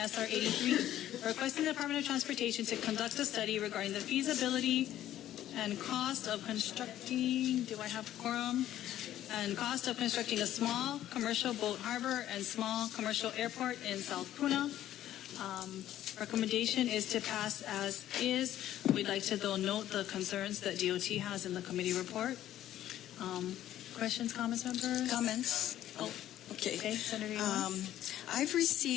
83, requesting the Department of Transportation to conduct a study regarding the feasibility and cost of constructing, do I have quorum? And cost of constructing a small commercial boat harbor and small commercial airport in South Puna. Recommendation is to pass as is. We'd like to though note the concerns that DOT has in the committee report. Questions, comments, members? Comments? Oh, okay. Okay, Senator Yuan. I've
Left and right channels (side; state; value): right; quieter; 12.5 dB